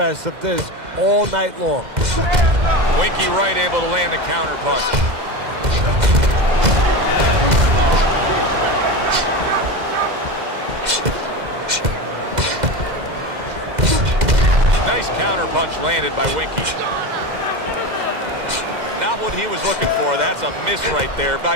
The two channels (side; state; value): left; late; 2.0 ms